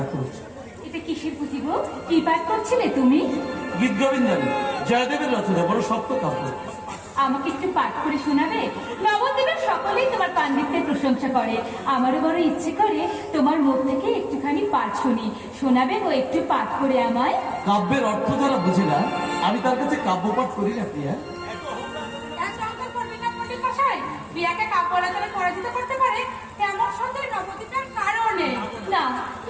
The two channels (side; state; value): both; identical; correlation 1.00